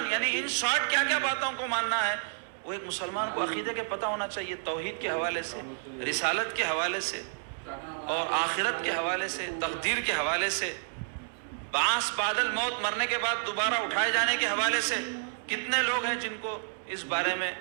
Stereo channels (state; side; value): silent; left; digital silence